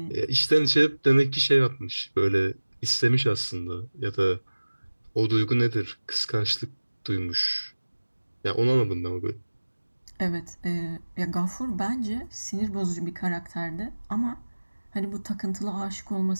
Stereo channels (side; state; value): both; inverted; correlation -1.00